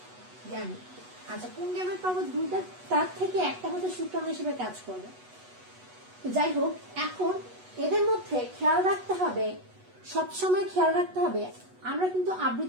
আচ্ছা, পুংগ্যামেট পাবো দুইটা, তার থেকে একটা হচ্ছে শুক্রাণু হিসেবে কাজ করবে। যাই হোক, এখন এদের মধ্যে খেয়াল রাখতে হবে, সবসময় খেয়াল রাখতে হবে, আমরা কিন্তু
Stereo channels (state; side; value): late; left; 8.1 ms